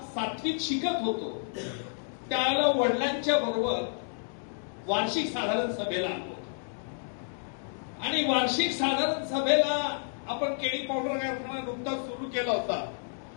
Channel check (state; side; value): silent; right; digital silence